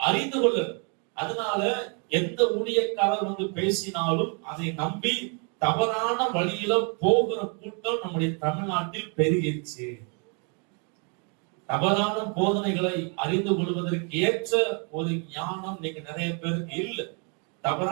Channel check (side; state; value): left; quieter; 37.7 dB